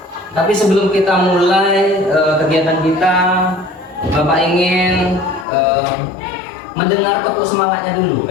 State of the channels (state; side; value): drops out; right; at 5.5 s